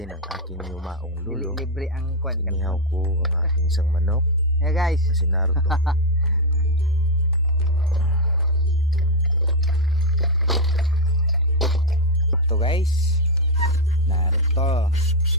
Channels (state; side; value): normal; both; correlation 0.02